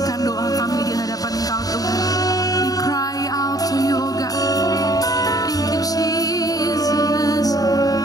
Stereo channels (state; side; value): late; right; 0.18 ms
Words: doa kami di hadapan Engkau Tuhan. We cry out to you, oh God. Thank you, Jesus.